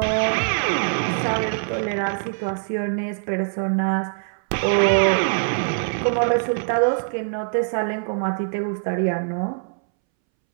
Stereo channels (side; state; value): left; silent; 63 dB below the other